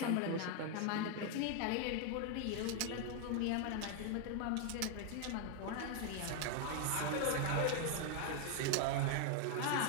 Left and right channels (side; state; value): both; different; correlation 0.00